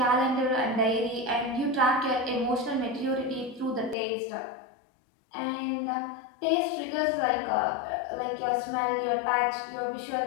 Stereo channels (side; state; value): right; drops out; at 4.0 s